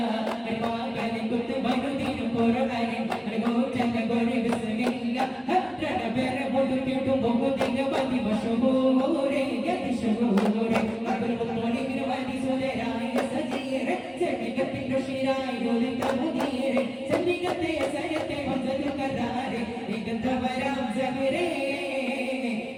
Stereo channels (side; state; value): both; identical; correlation 1.00